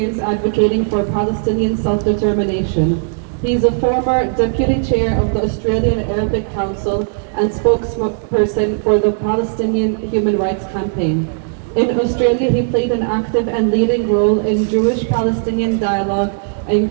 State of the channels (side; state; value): left; silent; digital silence